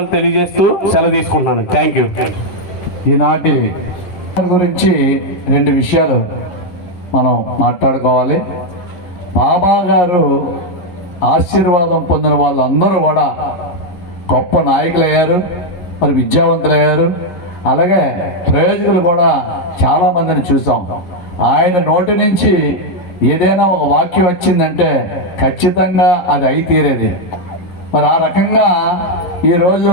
తెలియజేస్తూ సెలవు తీసుకుంటున్నాను. Thank you. ఈనాటి గురించి 2 విషయాలు మనం మాట్లాడుకోవాలి. బాబా గారు ఆశీర్వాదం పొందిన వాళ్ళందరూ కూడా గొప్ప నాయకులు అయ్యారు, మరి విద్యావంతులు అయ్యారు. అలాగే ప్రయోజకులు కూడా చాలామందిని చూసాం. ఆయన నోటి నుంచి ఏదైనా ఒక వాక్యం వచ్చిందంటే ఖచ్చితంగా అది అయి తీరేది. మరి ఆ రకంగా ఈరోజు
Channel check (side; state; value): right; late; 11 ms